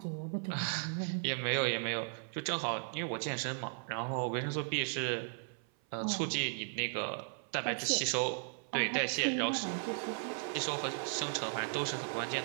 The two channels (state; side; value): silent; left; 54 dB below the other